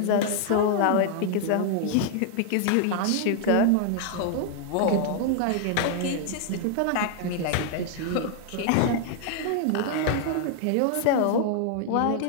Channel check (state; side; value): different; both; correlation 0.00